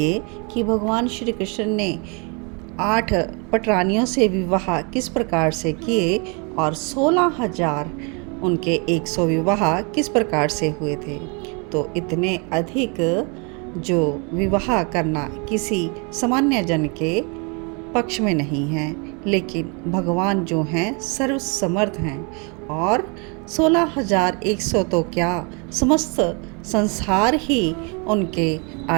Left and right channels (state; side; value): quieter; left; 33.2 dB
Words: कि भगवान श्री कृष्ण ने 8 पटरानियों से विवाह किस प्रकार से किए और 16,000 उनके 100 विवाह किस प्रकार से हुए थे। तो इतने अधिक जो विवाह करना किसी सामान्य जन के पक्ष में नहीं है, लेकिन भगवान जो हैं सर्वसमर्थ हैं और 16,100 तो क्या, समस्त संसार ही उनके